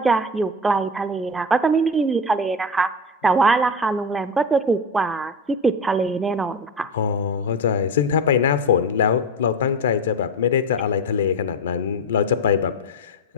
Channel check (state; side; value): normal; both; correlation 0.22